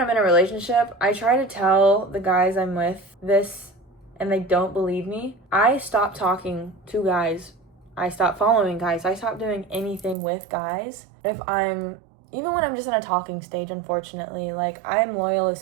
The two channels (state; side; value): drops out; left; at 10.2 s